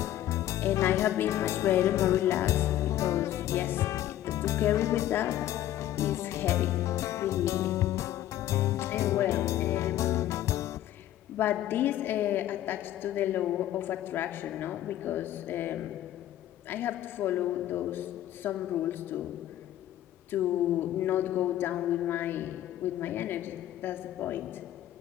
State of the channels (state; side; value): quieter; right; 13.0 dB